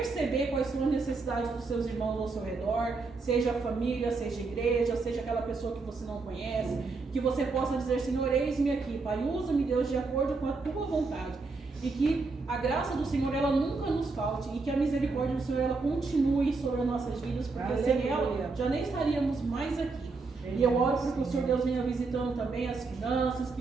quais são as necessidades dos seus irmãos ao seu redor, seja a família, seja a igreja, seja aquela pessoa que você não conhece, que você possa dizer, Senhor, eis-me aqui, Pai, usa-me, Deus, de acordo com a tua vontade. E que a graça do Senhor, ela nunca nos falte. E que a misericórdia do Senhor, ela continue sobre as nossas vidas. Porque sem ela, já nem estaríamos mais aqui. E eu oro para que o Senhor Deus venha visitando também as finanças.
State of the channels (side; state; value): left; quieter; 4.0 dB